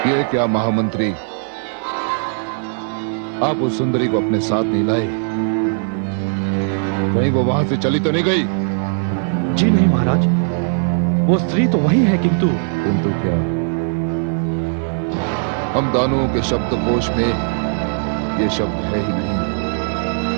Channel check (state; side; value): silent; left; digital silence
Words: ये क्या महामंत्री, आप उस सुंदरी को अपने साथ नहीं लाए? कहीं वो वहां से चली तो नहीं गई? जी नहीं महाराज, वो स्त्री तो वही है, किंतु क्या? हम दानवों के शब्दकोश में ये शब्द है ही नहीं।